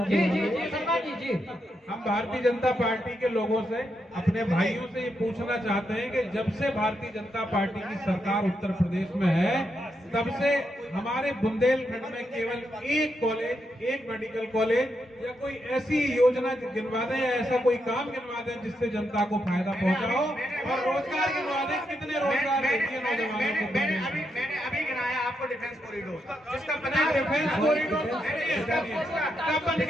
जी हम भारतीय जनता पार्टी के लोगों से, अपने भाइयों से ये पूछना चाहते हैं कि जब से भारतीय जनता पार्टी की सरकार उत्तर प्रदेश में है, तब से हमारे बुंदेलखंड में केवल एक कॉलेज, एक मेडिकल कॉलेज या कोई ऐसी योजना गिनवा दें या ऐसा कोई काम गिनवा दें जिससे जनता को फायदा पहुंचा हो, और रोजगार गिनवा दें। कितने रोजगार देती है नौजवानों को? मैंने अभी गिनाया आपको डिफेंस कॉरिडोर, जिसका पता डिफेंस कॉरिडोर कब बन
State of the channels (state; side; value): normal; both; correlation 0.82